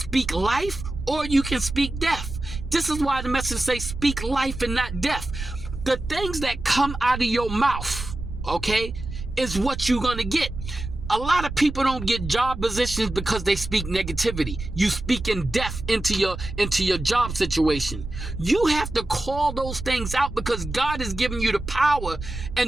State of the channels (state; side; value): noise; right; rumble, 8 dB below the sound